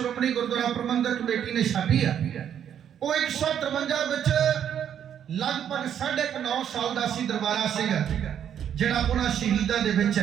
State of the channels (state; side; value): quieter; left; 9.2 dB